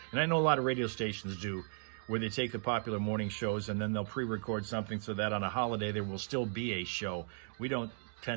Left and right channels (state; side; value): silent; left; 54 dB below the other